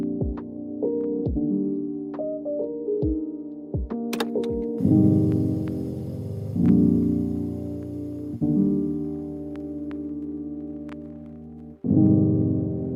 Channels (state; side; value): identical; both; correlation 1.00